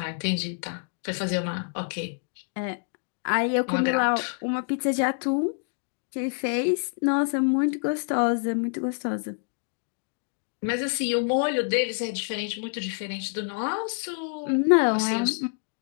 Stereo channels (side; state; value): right; silent; 60 dB below the other